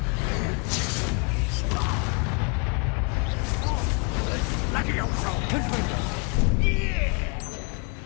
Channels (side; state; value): right; quieter; 35.0 dB